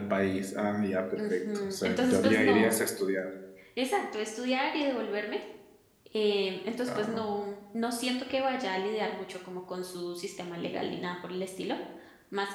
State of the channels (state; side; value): identical; both; correlation 1.00